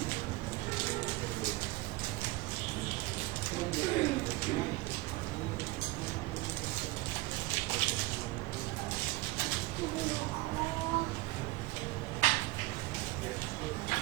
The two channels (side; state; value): left; quieter; 20.7 dB